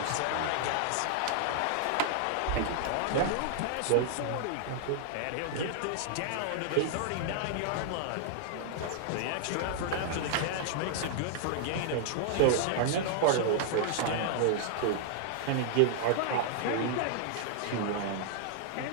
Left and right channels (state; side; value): different; both; correlation -0.01